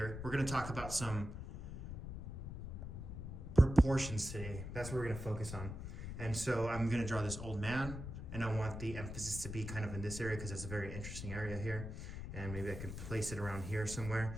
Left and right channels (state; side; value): noise; left; rumble, 7 dB below the sound